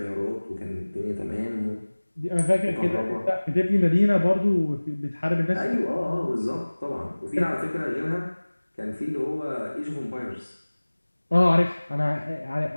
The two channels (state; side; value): inverted; both; correlation -1.00